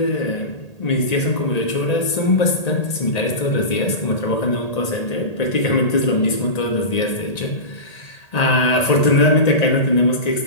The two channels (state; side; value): late; right; 1.8 ms